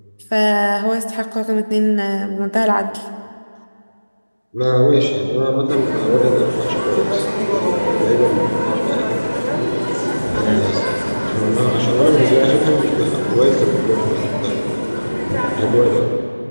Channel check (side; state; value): both; inverted; correlation -1.00